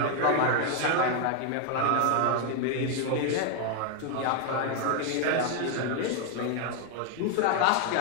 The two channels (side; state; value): both; different; correlation 0.00